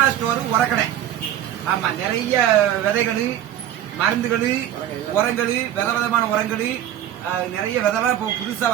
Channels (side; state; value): left; quieter; 11.3 dB